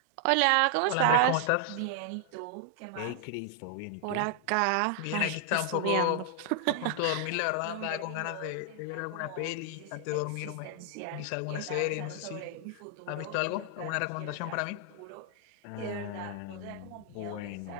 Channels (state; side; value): different; both; correlation 0.00